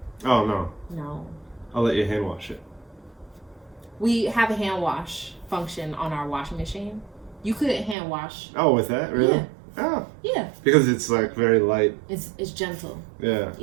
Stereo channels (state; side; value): drops out; left; at 8.0 s